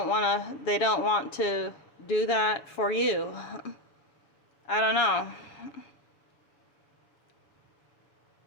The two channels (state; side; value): late; right; 7.1 ms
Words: want to do that for you. I don't know.